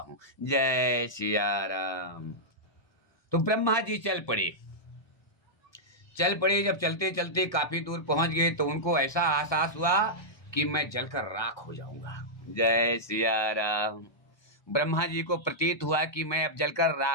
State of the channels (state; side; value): late; right; 1.2 ms